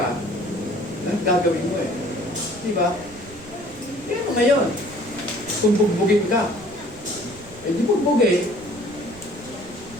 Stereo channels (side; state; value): right; noise; rumble, 20 dB below the sound